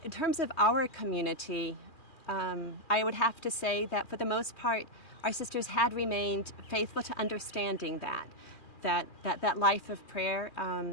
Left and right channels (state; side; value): late; right; 2.4 ms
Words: in terms of our community, I would have to say that for the most part, our sisters had remained faithful to understanding that life of prayer